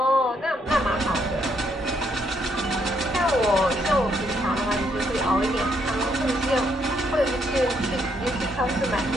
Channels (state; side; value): normal; both; correlation 0.73